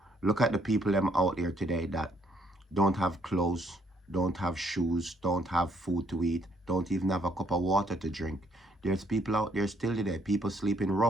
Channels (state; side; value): normal; both; correlation 0.69